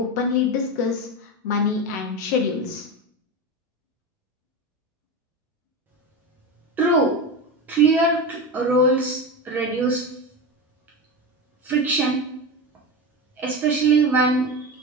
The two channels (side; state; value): both; normal; correlation 0.21